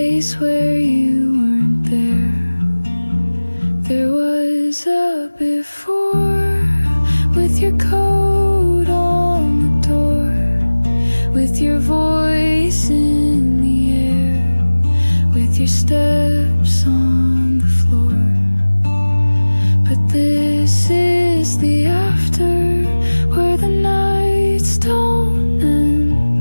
where you weren't there. There was a before with your coat on the door, with your voice in the air, with your steps on the floor. But this is the after, where the nights don't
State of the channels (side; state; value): both; inverted; correlation -1.00